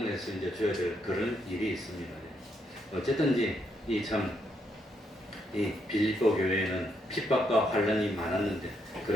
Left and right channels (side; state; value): both; normal; correlation 0.76